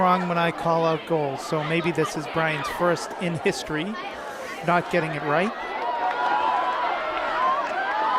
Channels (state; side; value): identical; both; correlation 1.00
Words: when I call out goals, so maybe this is Brian's first in history not getting it right.